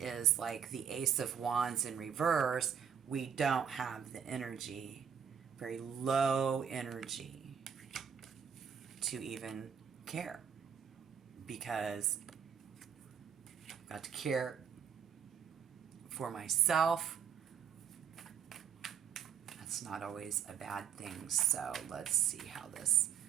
like the Ace of Wands in reverse. We don't have the energy, very low energy, to even care, because I've got to care for myself. It's not always a bad thing. So let's see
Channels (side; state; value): left; quieter; 7.7 dB